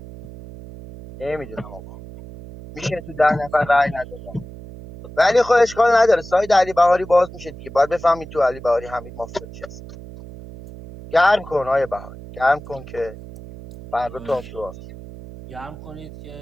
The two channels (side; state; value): right; noise; hum, 15 dB below the sound